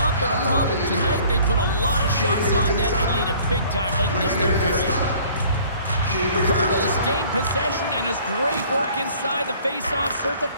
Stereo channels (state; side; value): inverted; both; correlation -0.53